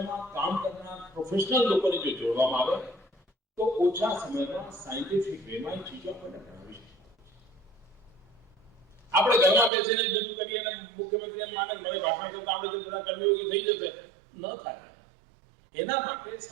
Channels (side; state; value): left; drops out; at 9.7 s